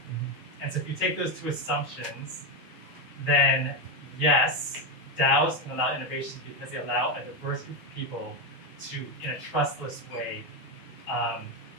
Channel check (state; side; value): normal; both; correlation 0.10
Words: And so if you take those two assumptions, then yes, DAOs can allow innovation because they allow a diverse group of people to, in a trustless way,